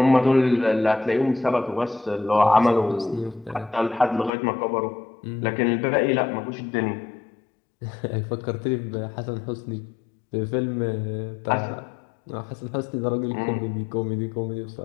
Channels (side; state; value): right; drops out; at 4.3 s